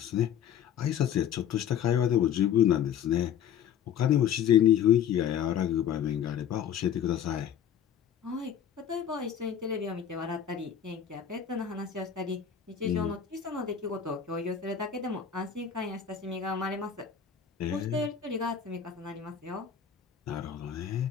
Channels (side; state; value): right; quieter; 8.8 dB